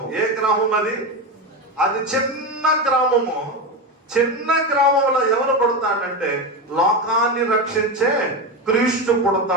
ఏ గ్రామం అది? అది చిన్న గ్రామము. చిన్న గ్రామంలో ఎవరు పుడతాడంటే లోకాన్ని రక్షించే క్రీస్తు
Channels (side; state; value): both; normal; correlation 0.17